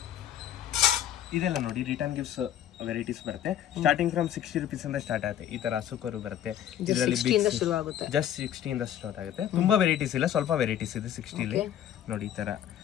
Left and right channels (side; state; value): right; quieter; 10.5 dB